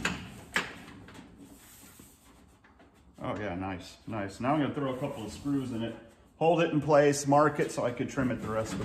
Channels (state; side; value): identical; both; correlation 1.00